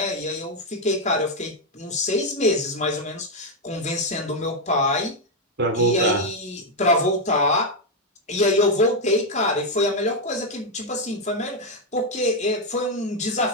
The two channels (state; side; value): normal; both; correlation 0.03